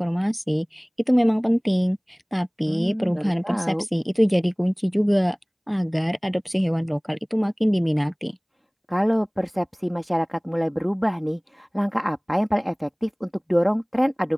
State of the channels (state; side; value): identical; both; correlation 1.00